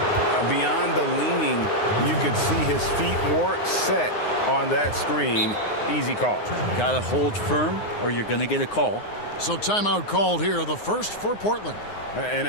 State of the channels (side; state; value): right; late; 9.6 ms